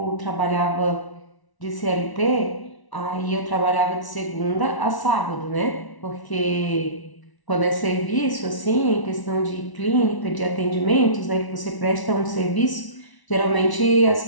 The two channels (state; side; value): late; right; 1.1 ms